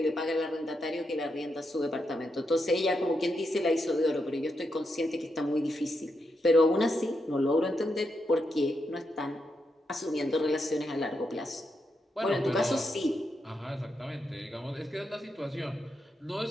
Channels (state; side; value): normal; both; correlation 0.83